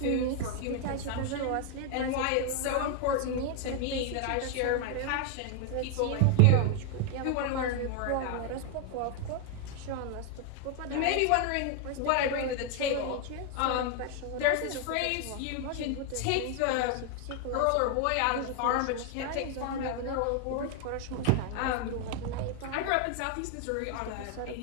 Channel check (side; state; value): both; different; correlation 0.00